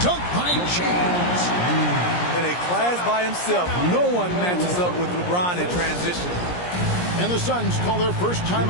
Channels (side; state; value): right; late; 17 ms